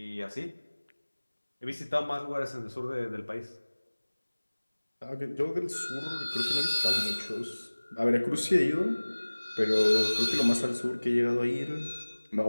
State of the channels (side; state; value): both; inverted; correlation -1.00